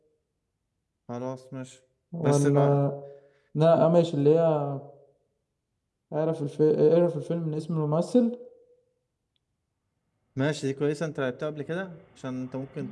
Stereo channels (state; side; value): identical; both; correlation 1.00